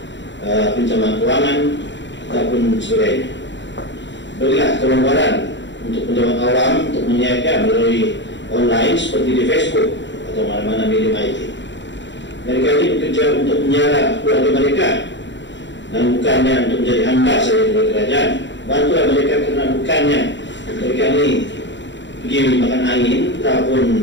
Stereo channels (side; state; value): right; late; 0.53 ms